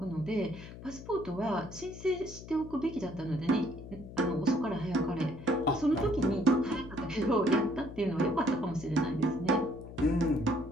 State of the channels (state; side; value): noise; left; hum, 14 dB below the sound